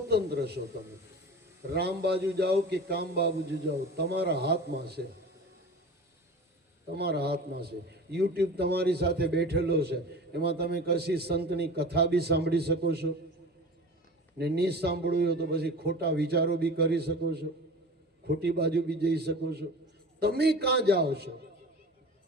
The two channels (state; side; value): normal; both; correlation 0.35